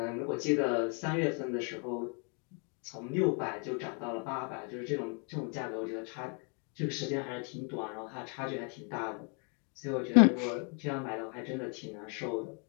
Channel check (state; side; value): quieter; right; 37.4 dB